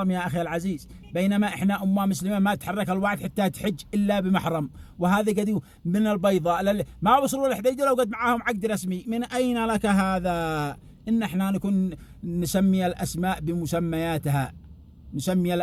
يا أخي العزيز؟ بينما إحنا أمة مسلمة ما تحرك الواحد حتى تحج إلا بمحرم. وهذا قد من البيضاء ما وصلوا للحديدة لو قد معاهم عقد رسمي. من أين لك هذا؟ إن إحنا نكون نسمي الأسماء بمسمياتها، نسمي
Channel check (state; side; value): identical; both; correlation 1.00